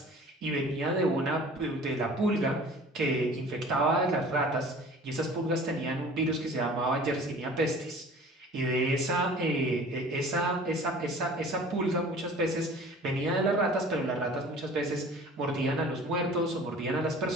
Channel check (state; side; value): normal; both; correlation 0.45